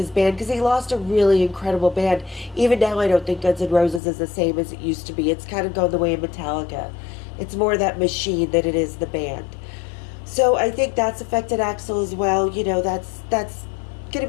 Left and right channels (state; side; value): drops out; right; at 4.0 s